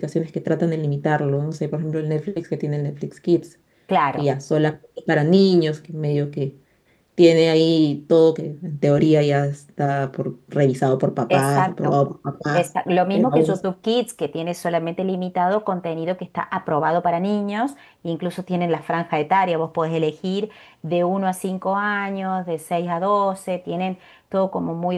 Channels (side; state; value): both; identical; correlation 1.00